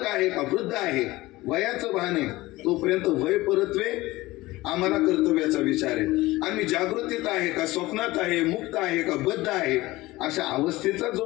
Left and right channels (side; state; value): right; quieter; 19.1 dB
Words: आहे का वृद्ध आहे वयाचं भान आहे तोपर्यंत वय परत्वे आम्हाला कर्तव्याचा विचार आहे. आणि मी जागृतीत आहे का स्वप्नात आहे, मुक्त आहे का बद्ध आहे अशा अवस्थेचा